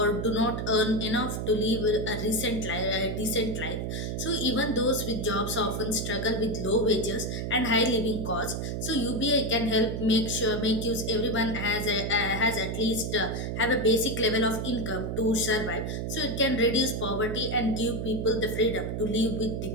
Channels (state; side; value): noise; right; hum, 3 dB below the sound